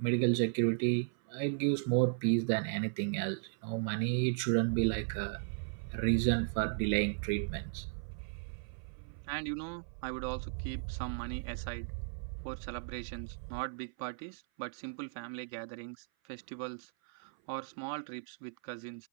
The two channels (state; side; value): silent; left; 54 dB below the other